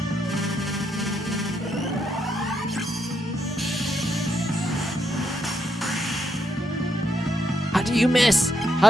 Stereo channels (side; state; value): both; normal; correlation 0.79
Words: do you miss?